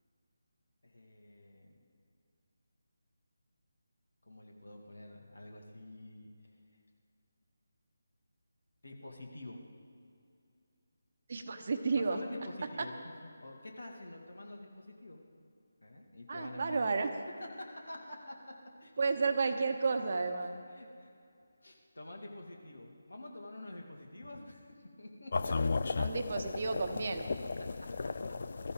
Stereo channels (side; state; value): both; inverted; correlation -0.89